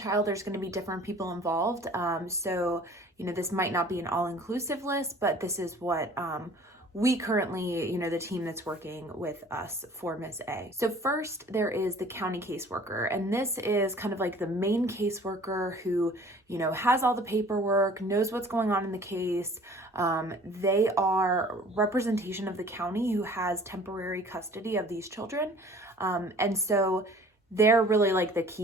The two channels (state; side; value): normal; both; correlation 0.50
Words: there's going to be different people involved. So, this might not be an all-inclusive list, but this is what we currently, the team that's working with us for Miss A. So first, there is the county caseworker, and this is kind of like the main caseworker who, has all the paperwork, knows what's going on in the case. They are representation of the county who has temporary custody of these children. And so they're really like the